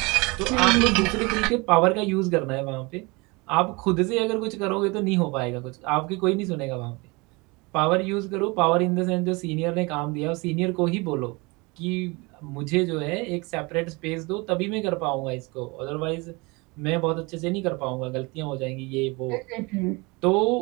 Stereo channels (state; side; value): quieter; left; 26.4 dB